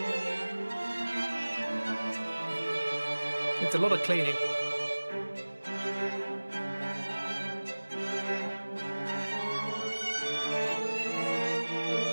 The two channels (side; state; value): both; inverted; correlation -1.00